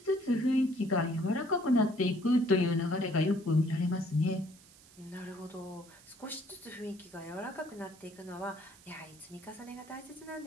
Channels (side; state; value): right; noise; hiss, 24 dB below the sound